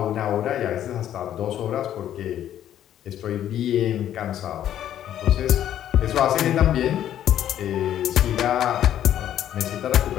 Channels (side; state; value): right; quieter; 11.1 dB